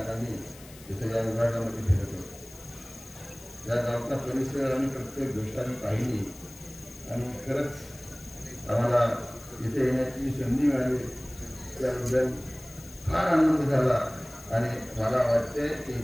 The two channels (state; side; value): noise; left; hiss, 20 dB below the sound